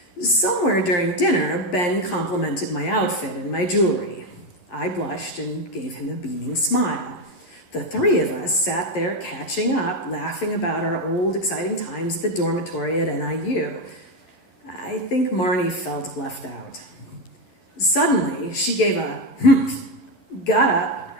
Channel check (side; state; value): right; late; 11 ms